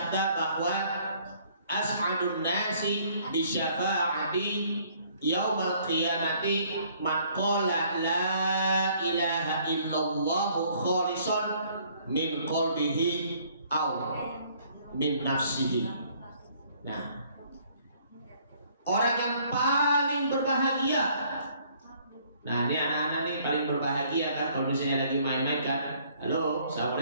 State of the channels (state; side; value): inverted; both; correlation -0.61